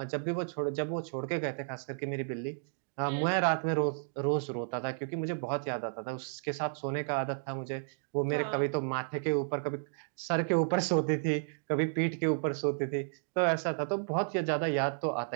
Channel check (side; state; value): left; silent; digital silence